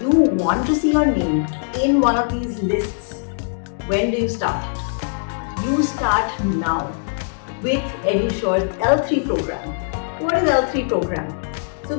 you want to see your name in one of these lists, when do you start? You start now with EduSure's L3 program. What is L3 program? So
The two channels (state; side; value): silent; right; digital silence